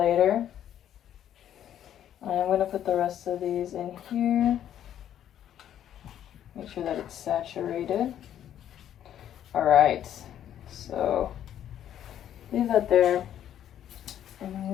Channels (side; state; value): right; quieter; 10.6 dB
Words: And I'm going to put the rest of these in here. Make sure that it's saturated. Alright, so leave that there. And